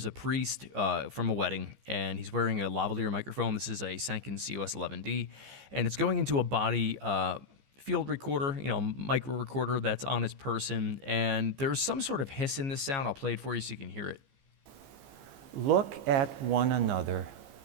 a priest from a wedding, and he's wearing a lavalier microphone. This is a Sanken COS11D, and it's going into a body field recorder, micro recorder that's on his person, and there's some sort of hiss in this sound. I'll play it for you so you can hear it. Look at one another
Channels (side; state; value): left; late; 15 ms